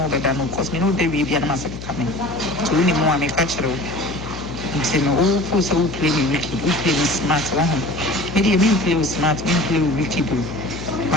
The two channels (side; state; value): left; noise; hum, 11 dB below the sound